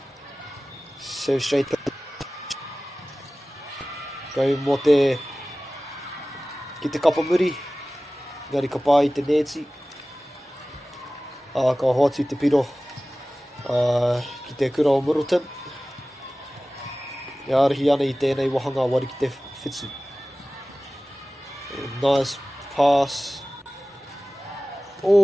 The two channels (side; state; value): both; normal; correlation 0.97